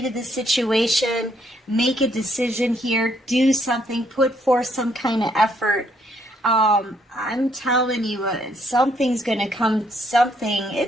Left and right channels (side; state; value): both; normal; correlation 0.70